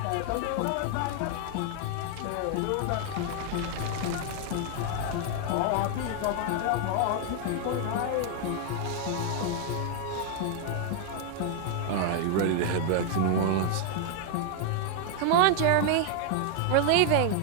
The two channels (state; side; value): different; both; correlation 0.00